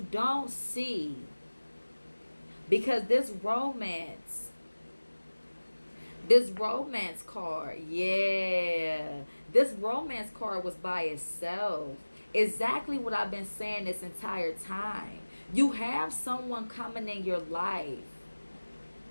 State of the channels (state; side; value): inverted; both; correlation -1.00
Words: don't see, because this romance card, yeah, this romance card was by itself. Exactly what I've been saying this entire time. You have someone coming in your life